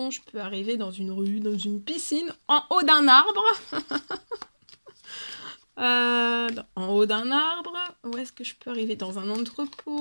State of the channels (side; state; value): both; inverted; correlation -1.00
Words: je peux arriver dans une rue, dans une piscine, en haut d'un arbre. En haut d'un arbre. Où est-ce que je peux arriver? Dans un